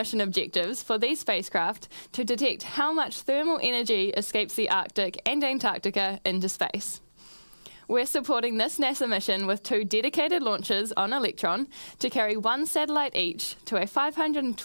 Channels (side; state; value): both; inverted; correlation -1.00